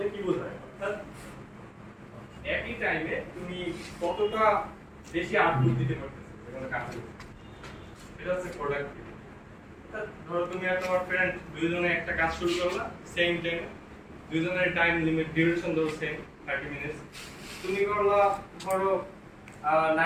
কি বোঝায়? অর্থাৎ একই টাইমে তুমি কতটা বেশি আউটপুট দিতে পারতেছো কোনো কাজে, এটা হচ্ছে প্রোডাক্টিভিটি। ধরো তুমি আর তোমার ফ্রেন্ড দুইজনে একটা কাজ শুরু করলা সেম টাইমে, দুইজনের টাইম লিমিট ডিউরেশন ধরো সেম 30 মিনিট। তুমি করলা ধরো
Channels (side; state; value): both; identical; correlation 1.00